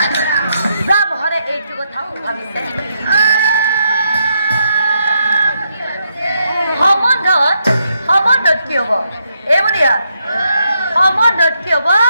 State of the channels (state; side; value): inverted; both; correlation -0.79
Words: ব্রাহ্মণে এইটু কথাও ভাবিছে সম্বন্ধত কি হব বনিয়া সম্বন্ধত কি হব